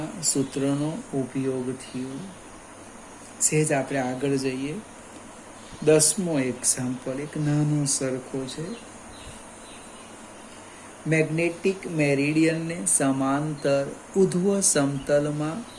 સૂત્રનો ઉપયોગ થયો. સહેજ આપણે આગળ જઈએ. 10મો એક્ઝામ્પલ એક નાનો સરખો છે. મેગ્નેટિક મેરિડિયનને સમાંતર ઉધ્વ સમતલમાં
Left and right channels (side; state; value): both; identical; correlation 1.00